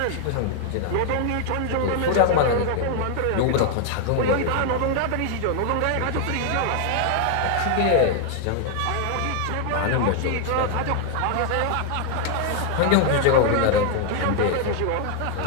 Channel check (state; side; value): different; both; correlation 0.00